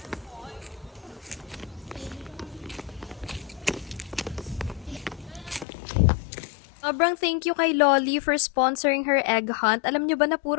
Sobrang thank you kay Lolly for sponsoring her egg hunt. Alam nyo ba na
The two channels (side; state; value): right; drops out; at 5.7 s